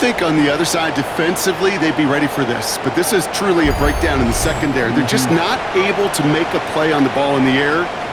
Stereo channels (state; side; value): identical; both; correlation 1.00